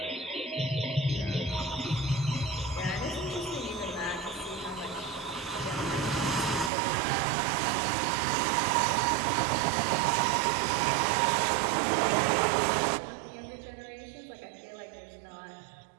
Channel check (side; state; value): left; drops out; at 6.7 s